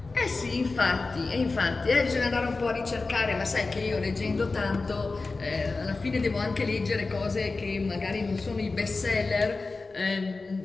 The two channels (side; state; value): right; quieter; 3.7 dB